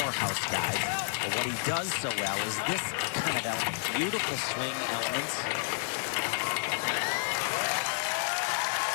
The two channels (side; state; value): right; silent; digital silence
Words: guys. But what he does so well is this kind of element, beautiful swing elements.